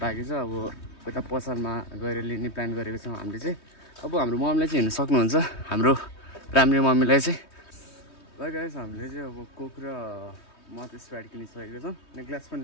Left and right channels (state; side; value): late; right; 3.2 ms